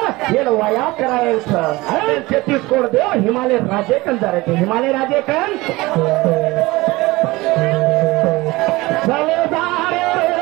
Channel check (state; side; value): quieter; left; 21.0 dB